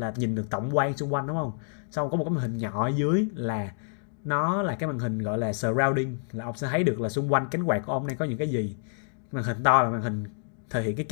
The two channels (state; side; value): silent; right; digital silence